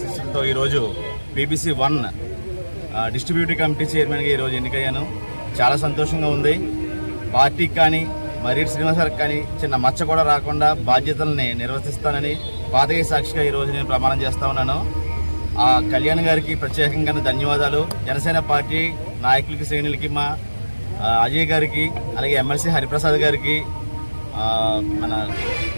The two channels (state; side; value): inverted; both; correlation -1.00